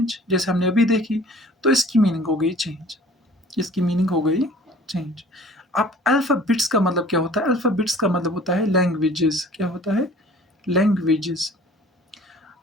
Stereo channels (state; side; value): normal; both; correlation 0.49